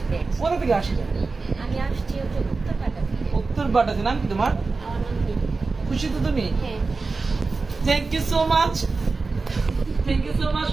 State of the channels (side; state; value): left; quieter; 4.0 dB